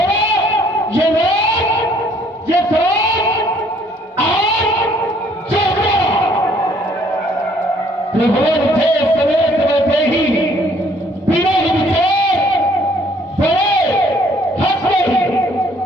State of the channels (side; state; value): both; normal; correlation 0.62